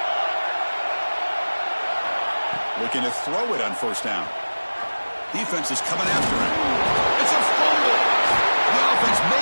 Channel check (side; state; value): both; inverted; correlation -1.00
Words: Looking to throw it on first down. Defense is coming after him. It's a fumble. The offense